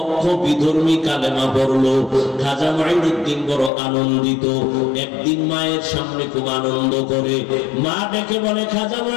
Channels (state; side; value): drops out; right; at 3.7 s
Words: বিধর্মী কালেমা পড়লো। খাজা মুঈনুদ্দিন বড় আনন্দিত। একদিন মায়ের সামনে খুব আনন্দ করে, মা ডেকে বলে, খাজা